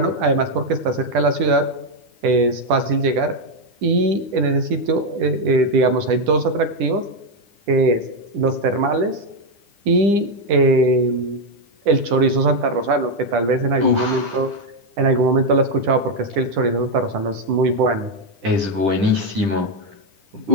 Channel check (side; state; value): left; late; 10 ms